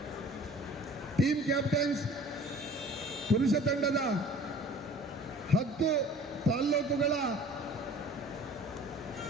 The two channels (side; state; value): both; normal; correlation 0.47